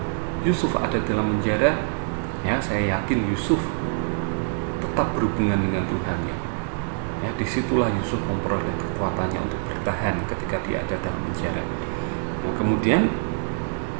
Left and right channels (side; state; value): left; silent; 62 dB below the other